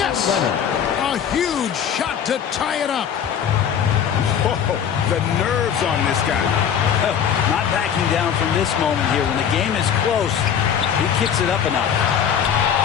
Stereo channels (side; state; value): right; quieter; 8.4 dB